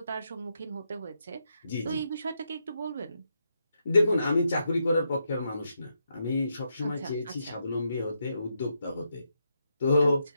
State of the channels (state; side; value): inverted; both; correlation -0.81